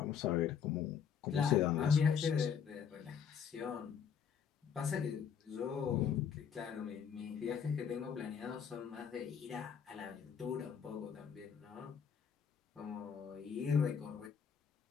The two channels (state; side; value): quieter; right; 7.4 dB